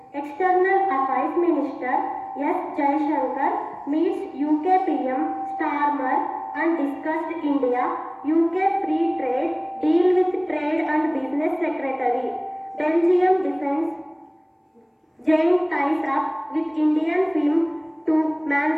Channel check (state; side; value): identical; both; correlation 1.00